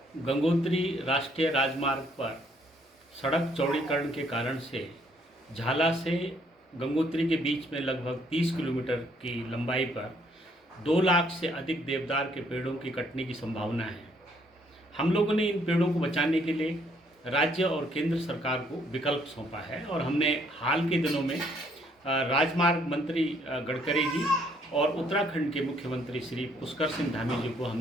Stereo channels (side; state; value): both; normal; correlation 0.67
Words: गंगोत्री राष्ट्रीय राजमार्ग पर सड़क चौड़ीकरण के कारण से झाला से गंगोत्री के बीच में लगभग 30 किलोमीटर की लंबाई पर 2 लाख से अधिक देवदार के पेड़ों की कटने की संभावना है। हम लोगों ने इन पेड़ों को बचाने के लिए राज्य और केंद्र सरकार को विकल्प सौंपा है और हमने हाल के दिनों में राजमार्ग मंत्री गडकरी जी और उत्तराखंड के मुख्यमंत्री श्री पुष्कर सिंह धामी जी को